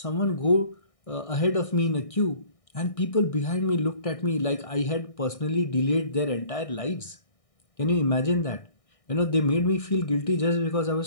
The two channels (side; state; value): right; late; 1.6 ms